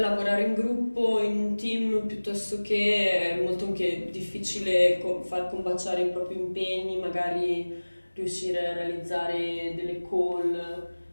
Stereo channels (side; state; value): both; inverted; correlation -1.00